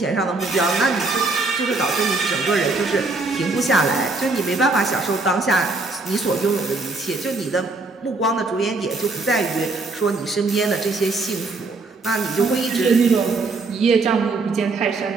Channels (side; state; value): left; quieter; 3.6 dB